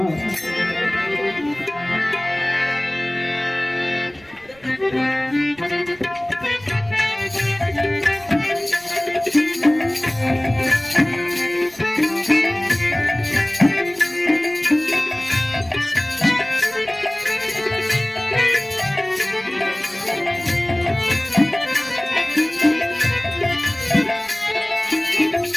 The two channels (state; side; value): noise; right; rumble, 28 dB below the sound